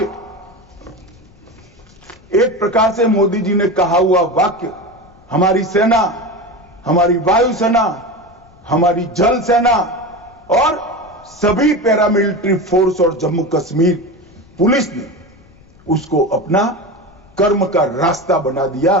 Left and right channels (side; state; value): left; noise; rumble, 27 dB below the sound